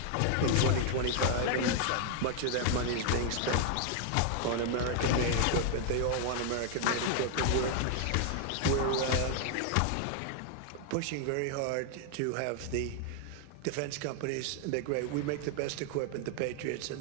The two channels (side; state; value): both; different; correlation 0.00